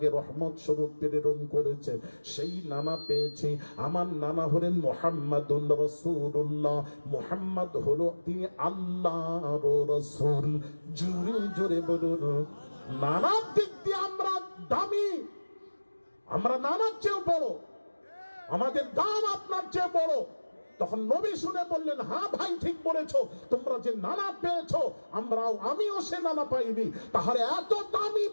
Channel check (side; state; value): both; inverted; correlation -1.00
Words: রহমত স্বরূপ প্রেরণ করেছে, সেই নানা পেয়েছি। আমার নানা হলেন মুহাম্মাদুর রাসূলুল্লাহ, মুহাম্মদ হলো তিনি আল্লাহর রাসূল। জোরে জোরে বলুন, নানার দিক দিয়ে আমরা দামি, আমরা নানার চেয়েও বড়, আমাদের দাম আপনার চেয়ে বড়। তখন নবী শুনে বললেন, হ্যাঁ ভাই ঠিক বলেছো, তোমরা যে নানা পেয়েছো আমিও সে নানা পাইনি, তাহলে এত দামি